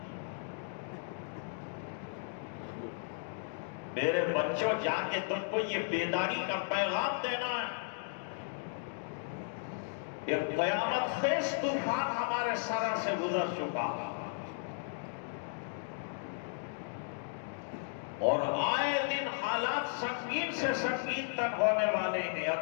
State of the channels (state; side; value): silent; right; digital silence